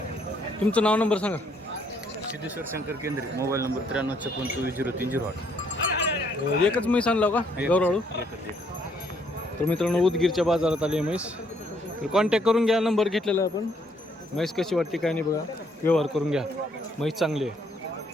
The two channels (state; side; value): normal; both; correlation 0.69